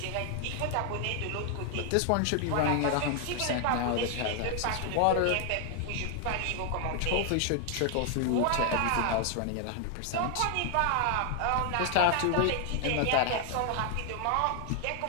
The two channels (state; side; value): different; both; correlation 0.00